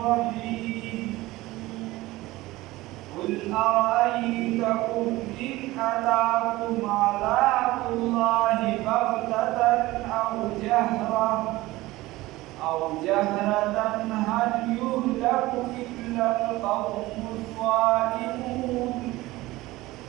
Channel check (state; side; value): quieter; left; 18.7 dB